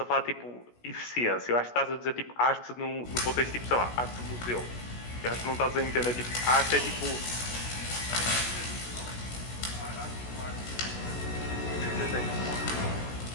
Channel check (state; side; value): late; right; 16 ms